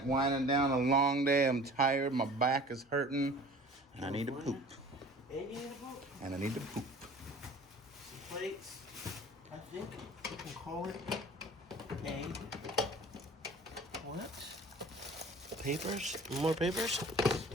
down a long day. I'm tired. My back is hurting. And I need to poop. And you need a book. And I need to poop. Some plates. I think you can call it a what? Papers? More papers?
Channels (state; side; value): normal; both; correlation 0.45